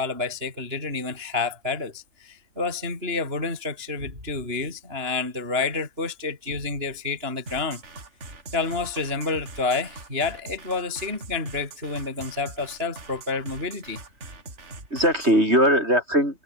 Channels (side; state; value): left; late; 2.9 ms